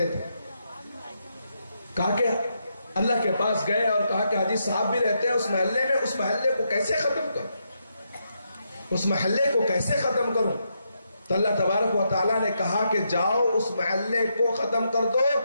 تھے۔ کہا کہ اللہ کے پاس گئے اور کہا کہ حاجی صاحب بھی رہتے ہیں اس محلے میں، اس محلے کو کیسے ختم کروں، اس محلے کو کیسے ختم کروں؟ تو اللہ تبارک و تعالیٰ نے کہا کہ جاؤ اس محلے کو ختم کر دو،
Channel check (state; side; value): inverted; both; correlation -0.81